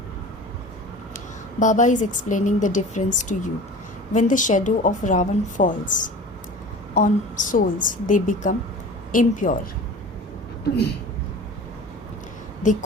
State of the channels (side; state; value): both; normal; correlation 0.38